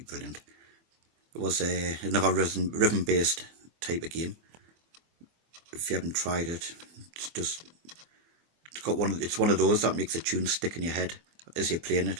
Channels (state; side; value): late; left; 24 ms